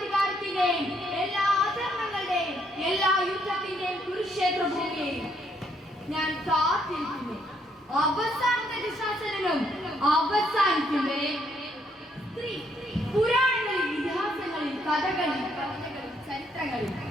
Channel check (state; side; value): normal; both; correlation 0.71